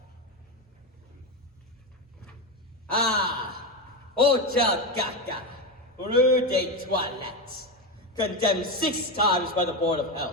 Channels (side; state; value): both; normal; correlation 0.14